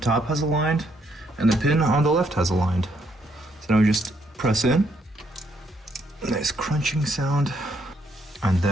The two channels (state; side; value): normal; both; correlation 0.73